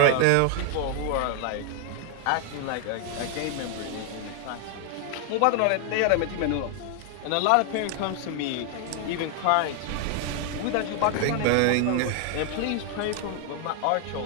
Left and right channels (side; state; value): both; different; correlation 0.00